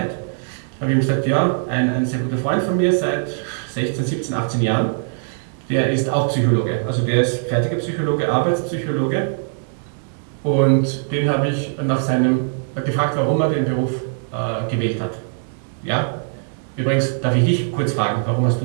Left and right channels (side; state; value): left; silent; 65 dB below the other